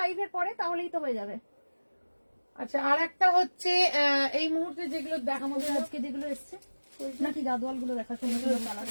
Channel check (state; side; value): inverted; both; correlation -1.00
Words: পরে, তাহলেই তো হয়ে যাবে। আচ্ছা আর একটা হচ্ছে এই মুহূর্তে যেগুলো দেখা, আমাদের আজকে যেগুলো এসছে নাকি গাদোয়াল গুলো দেখা, সুন্দর সুন্দর কালার,